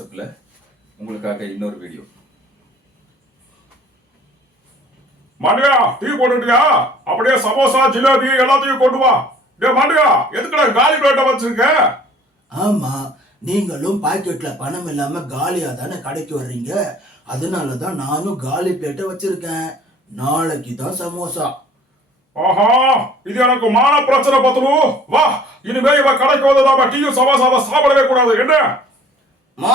உங்களுக்காக இன்னொரு வீடியோ. மாண்டியா டீ போட்டுட்டியா? அப்படியே சமோசா ஜிலேபி எல்லாத்தையும் கொண்டு வா. டே மாண்டியா, எதுக்குடா காலி பிளேட்டை வச்சிருக்க? ஆமா, நீங்களும் பாக்கெட்ல பணம் இல்லாம காலியா தானே கடைக்கு வர்றீங்க. அதனாலதான் நானும் காலி பிளேட்டை வச்சிருக்கேன். நாளைக்கு தான் சமோசா. ஆஹா, இது எனக்கு மான பிரச்சனை பத்துரு. வா, இனிமே இவ கடைக்கு வந்ததாம டீயும் சமோசாவை சாப்பிடவே கூடாது. என்ன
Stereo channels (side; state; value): both; normal; correlation 0.53